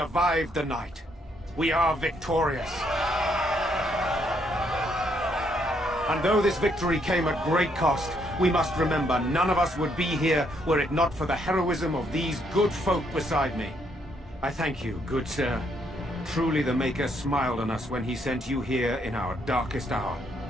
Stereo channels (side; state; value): both; normal; correlation 0.72